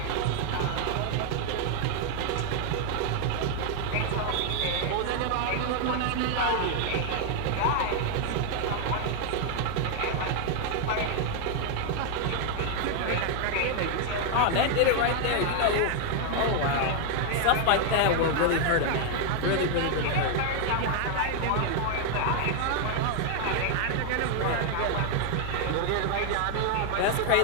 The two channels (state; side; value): different; both; correlation 0.00